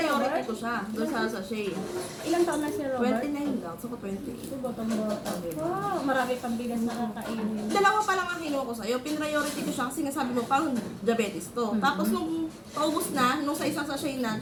Robert? ko siya. Doon sa sachet. Ilang taon na si Robert? 29 lang. So, 28. Botong-bota. Wow, marami pang bigas na kakainin. Dalawa pa lang ang kinuha ko sa'yo. Pin-priority ko siya kasi nga sabi mo, parang diabetes to. Tapos nung paubos na, nung sa isang sachet na,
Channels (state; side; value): identical; both; correlation 1.00